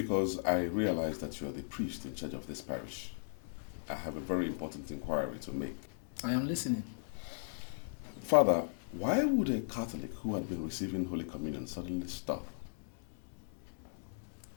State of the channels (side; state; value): right; silent; 53 dB below the other